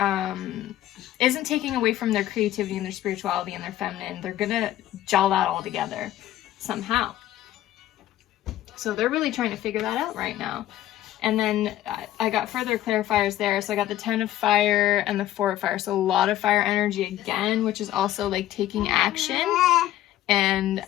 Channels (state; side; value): quieter; right; 13.7 dB